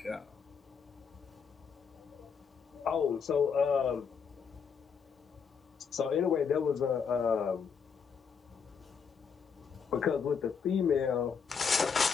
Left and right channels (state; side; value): quieter; right; 6.2 dB